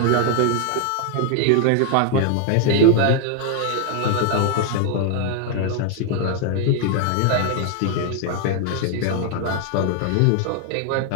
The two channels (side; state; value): both; different; correlation 0.00